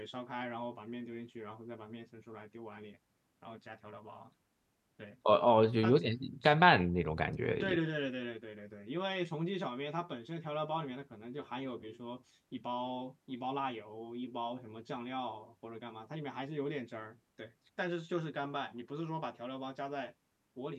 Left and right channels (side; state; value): both; identical; correlation 1.00